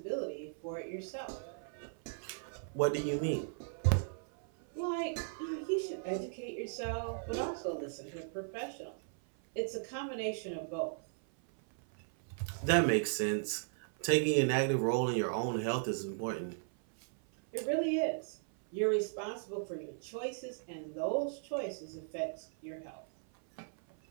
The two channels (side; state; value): left; silent; 53 dB below the other